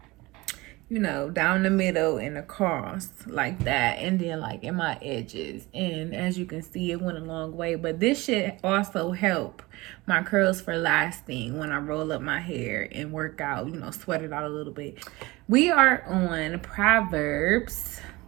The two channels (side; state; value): left; quieter; 21.6 dB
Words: down the middle and across like that, and then like in my edges. And as you can see, it went a long way. But this should also help my curls for lasting when I roll up my hair and work out, sweat it out a little bit. We are on Proverbs